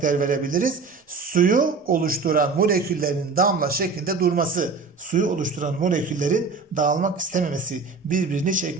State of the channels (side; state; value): left; quieter; 4.6 dB